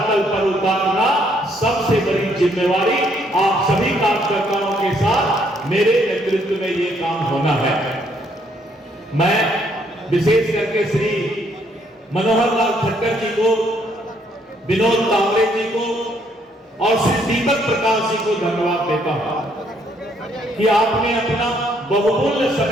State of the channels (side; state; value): both; normal; correlation 0.69